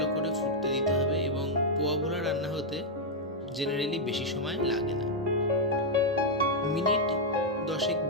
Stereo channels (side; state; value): both; normal; correlation -0.03